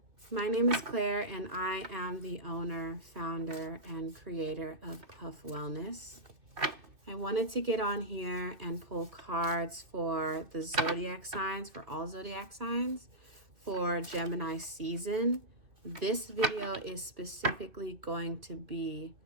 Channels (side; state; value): left; late; 2.6 ms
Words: my name is Claire and I am the owner, founder, and creator of Puff Wellness. I wanted to get on here and pull cards for the zodiac signs, for all zodiac signs, for Gemini season. This video is specifically going to be